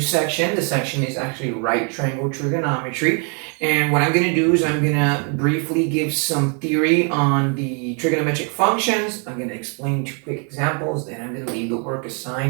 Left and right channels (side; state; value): left; quieter; 38.2 dB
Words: section. The section is actually right triangle trigonometry. And what I'm going to do is I'm going to briefly give some theory on the trigonometric functions. I'm going to explain two quick examples, then I'm going to leave the work